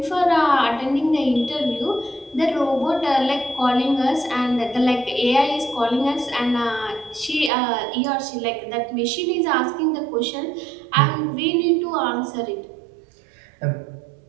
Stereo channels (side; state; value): left; drops out; at 7.5 s